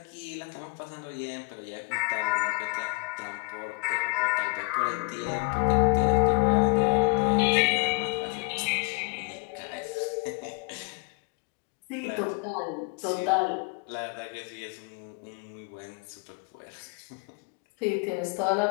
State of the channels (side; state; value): right; quieter; 30.2 dB